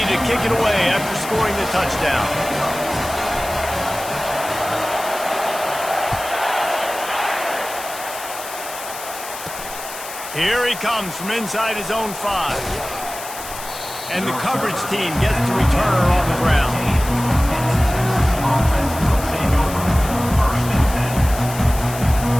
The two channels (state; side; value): noise; left; hiss, 11 dB below the sound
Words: to kick it away after scoring the touchdown. Here he comes from inside his own 5. And the coverage team gets the returner on the ground.